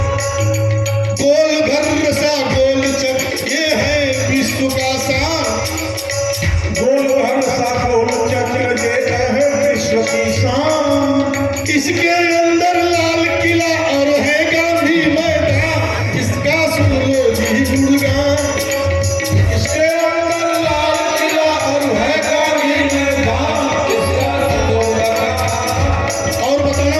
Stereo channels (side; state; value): both; identical; correlation 1.00